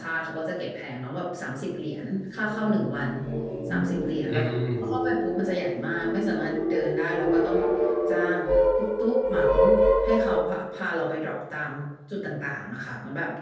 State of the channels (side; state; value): both; identical; correlation 1.00